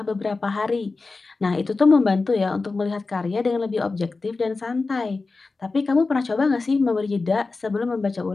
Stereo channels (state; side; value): quieter; right; 3.8 dB